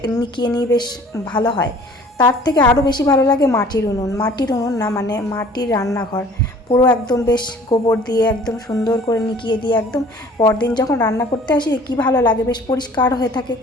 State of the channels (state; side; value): normal; both; correlation 0.51